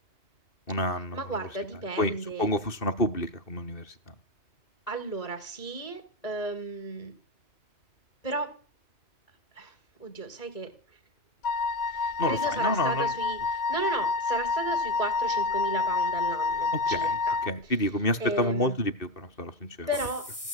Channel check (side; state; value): right; late; 2.6 ms